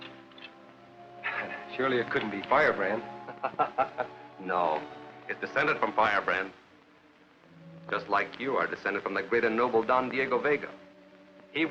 Surely it couldn't be Firebrand. No, it's descended from Firebrand. Just like you are descended from the great and noble Don Diego Vega. He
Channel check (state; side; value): identical; both; correlation 1.00